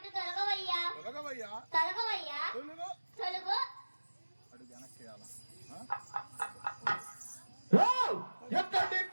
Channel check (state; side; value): inverted; both; correlation -1.00